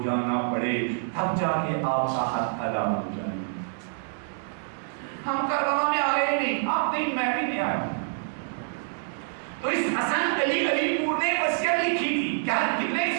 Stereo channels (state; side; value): silent; left; digital silence